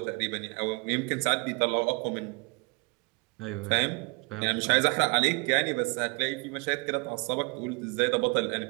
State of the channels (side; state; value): left; quieter; 30.3 dB